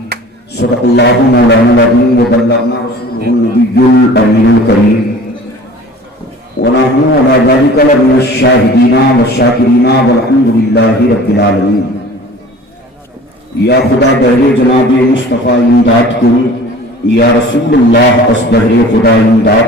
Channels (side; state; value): both; normal; correlation 0.44